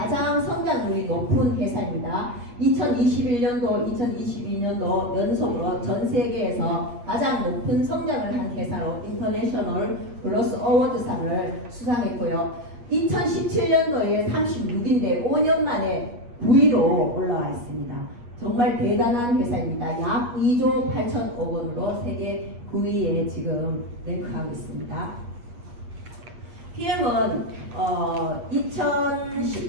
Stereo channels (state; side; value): late; left; 8.3 ms